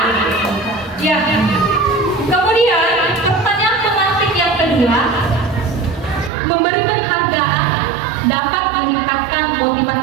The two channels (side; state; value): left; drops out; at 6.3 s